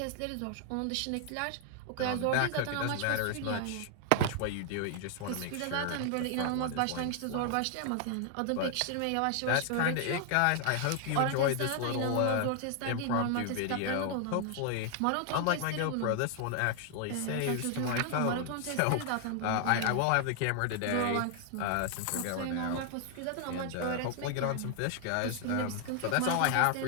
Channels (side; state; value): both; different; correlation 0.00